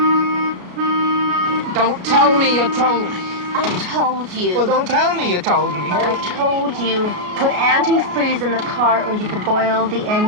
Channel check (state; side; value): late; left; 33 ms